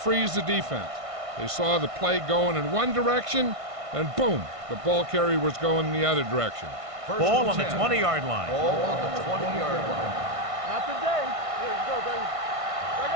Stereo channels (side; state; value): left; late; 1.5 ms